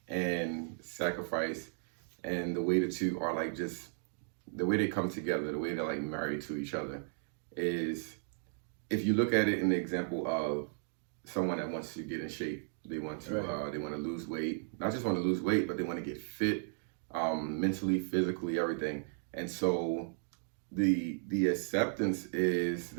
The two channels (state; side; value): silent; left; digital silence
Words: and sacrifice, and the way the two are like just the way they come together, the way they're like married to each other, is if you look at it in the example of someone that wants to get in shape, they want to they want to lose weight, not just want to lose weight, but they want to get fit, mentally, physically, everything. And so the acceptance is